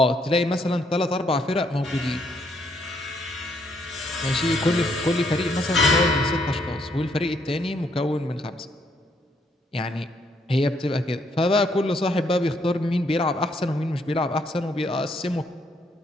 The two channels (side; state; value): both; normal; correlation 0.71